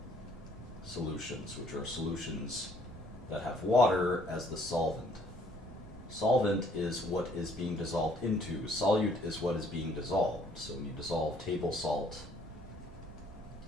solutions, which are solutions that have water as the solvent. Solvent is what is being dissolved into. Solute is what is being dissolved. So when you dissolve table salt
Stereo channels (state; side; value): normal; both; correlation 0.63